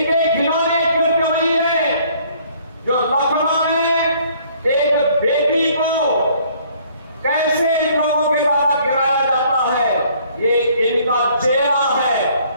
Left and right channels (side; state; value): both; inverted; correlation -0.60